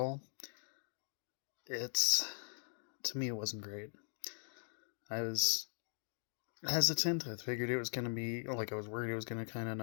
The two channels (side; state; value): right; silent; digital silence